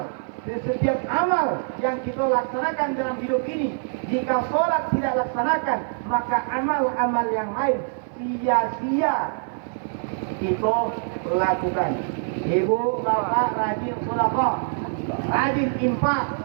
di setiap amal yang kita laksanakan dalam hidup ini, jika sholat tidak laksanakan, maka amal-amal yang lain sia-sia kita lakukan. Ibu, bapak rajin sedekah, rajin infak,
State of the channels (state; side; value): silent; left; 55 dB below the other